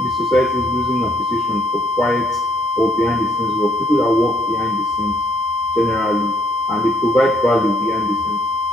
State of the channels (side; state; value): both; normal; correlation 0.69